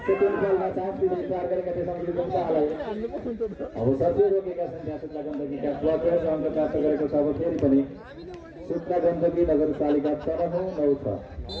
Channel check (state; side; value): identical; both; correlation 1.00